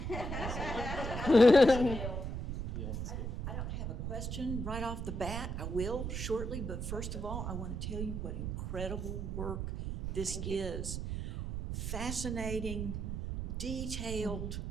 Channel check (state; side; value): noise; right; rumble, 4 dB below the sound